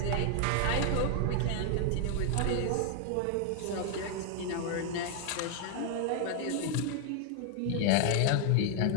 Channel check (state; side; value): different; both; correlation 0.00